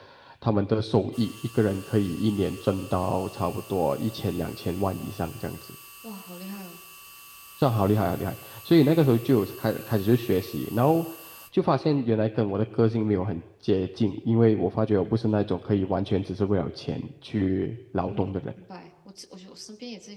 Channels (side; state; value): both; identical; correlation 1.00